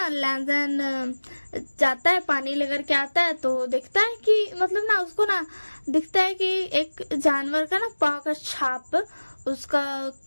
लैंजन जाता है पानी लेकर के आता है, तो देखता है कि मतलब ना उसको ना दिखता है कि एक जानवर का ना पाँव का छाप उसका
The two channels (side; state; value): both; inverted; correlation -1.00